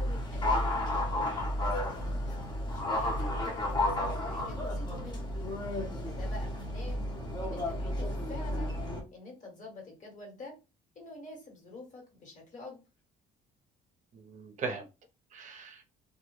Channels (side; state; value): both; normal; correlation 0.58